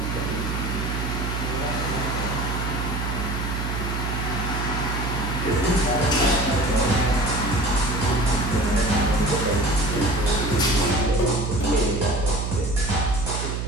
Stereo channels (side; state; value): right; noise; hum, 3 dB below the sound